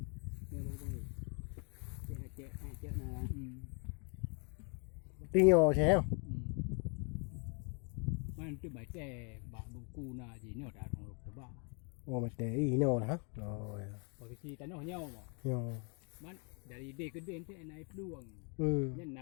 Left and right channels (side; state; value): right; quieter; 37.1 dB